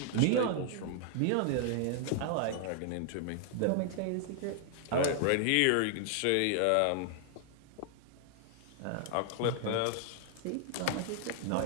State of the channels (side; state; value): both; different; correlation 0.00